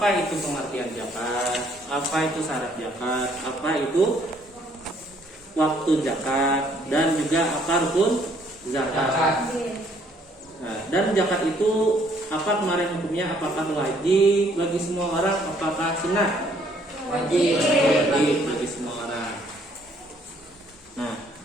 itu pengertian zakat, apa itu syarat zakat, apa itu waktu zakat, dan juga apa rukun zakat. Yes. Nah, dan zakat itu apa kemarin hukumnya? Apakah wajib bagi semua orang? Apakah sunnah? wajib. Wajib bagi semua orang. Nah,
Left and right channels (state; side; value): normal; both; correlation 0.64